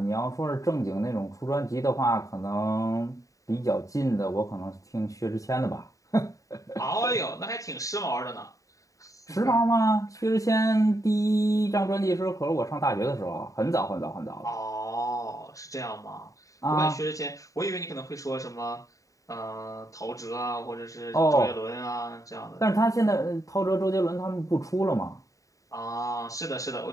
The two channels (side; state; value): right; late; 0.16 ms